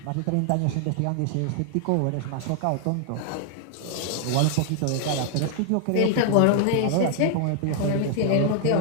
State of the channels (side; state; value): both; different; correlation 0.00